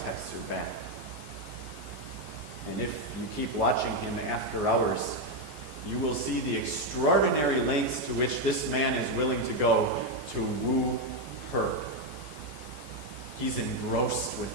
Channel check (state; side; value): late; left; 14 ms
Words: texts her back. And if you keep watching him after hours, you will see the extraordinary lengths to which this man is willing to go to woo her. He's engrossed